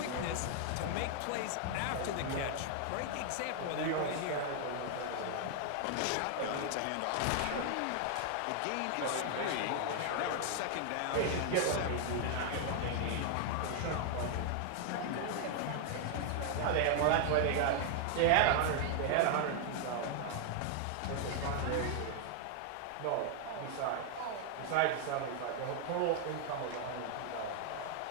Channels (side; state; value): both; different; correlation 0.00